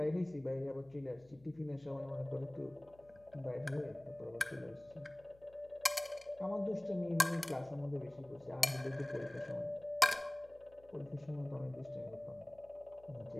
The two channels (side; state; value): left; noise; hum, 26 dB below the sound